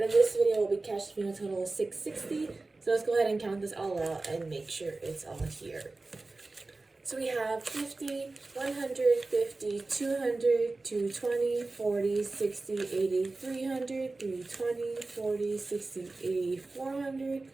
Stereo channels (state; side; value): quieter; left; 3.4 dB